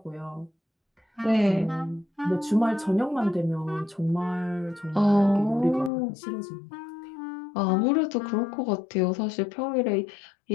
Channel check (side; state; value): right; drops out; at 5.9 s